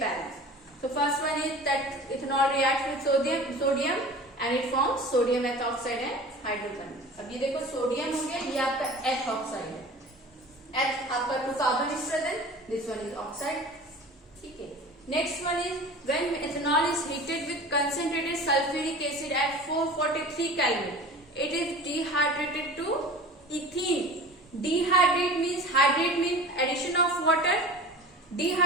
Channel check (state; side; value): normal; both; correlation 0.38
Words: balanced. So first one is that ethanol reacts with sodium and it forms sodium ethoxide and hydrogen. अब ये देखो sodium हो गया, ये आपका ethoxide है. H आपका 2 carbon is present. This one is oxide. ठीक है. Next one is when ethanol is heated with concentrated sulfuric acid at 443 Kelvin, it is dehydrated to ethene. Dehydrate means, hydrate means addition of water.